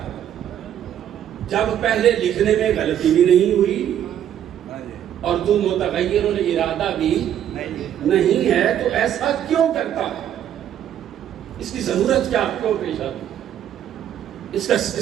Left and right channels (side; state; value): left; quieter; 10.3 dB